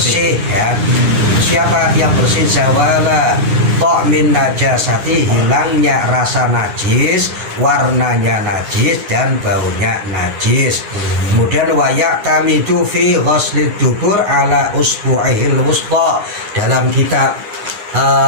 ya. Siapa yang bersih? Zawala ta'min najasati, hilangnya rasa najis, warnanya najis, dan baunya najis. Kemudian wayak tamidu fi ghuslid dubur ala usbu'ihil wusta, dalam kitab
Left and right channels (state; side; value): late; left; 9.6 ms